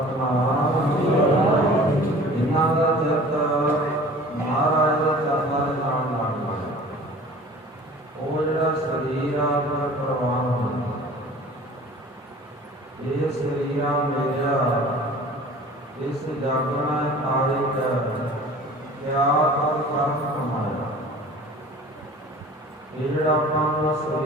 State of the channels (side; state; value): both; normal; correlation 0.45